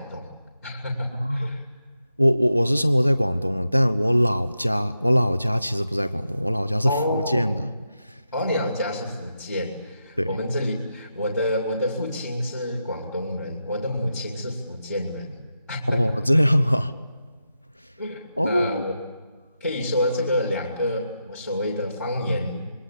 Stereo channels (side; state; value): both; inverted; correlation -0.87